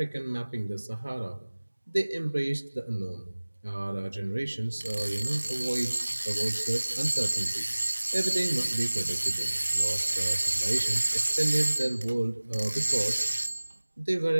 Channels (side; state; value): both; inverted; correlation -1.00